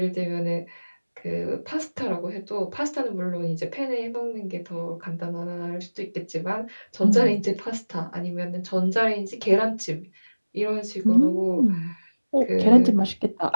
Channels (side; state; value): both; inverted; correlation -1.00